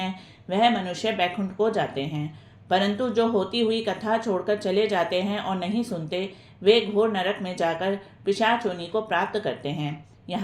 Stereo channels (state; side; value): identical; both; correlation 1.00